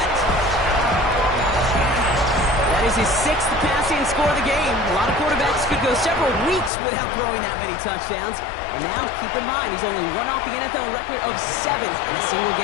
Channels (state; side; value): drops out; right; at 6.7 s